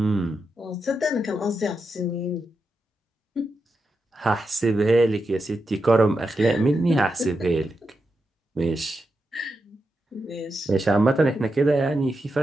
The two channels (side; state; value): both; normal; correlation 0.87